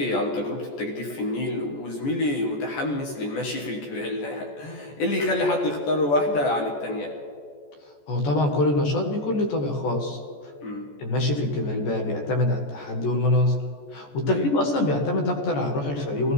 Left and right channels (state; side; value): late; right; 14 ms